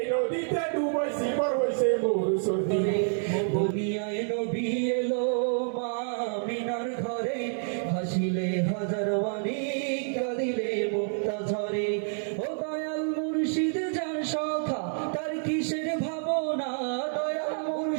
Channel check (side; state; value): left; silent; digital silence